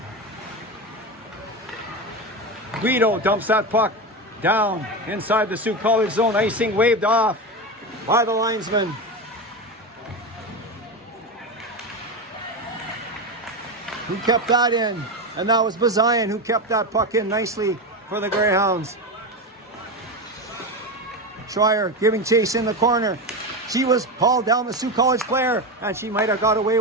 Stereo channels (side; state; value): both; normal; correlation 0.18